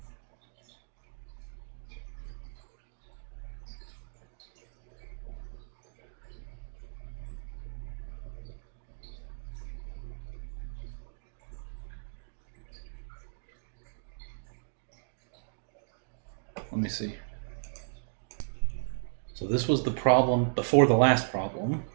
Let me see. So this was the problem before the last problem,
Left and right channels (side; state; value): left; silent; digital silence